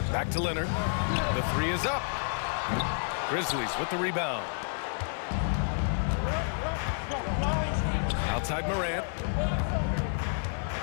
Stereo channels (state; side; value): silent; right; 58 dB below the other